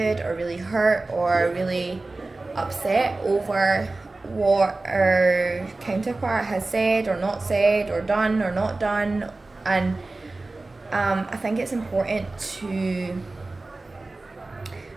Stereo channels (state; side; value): quieter; left; 3.2 dB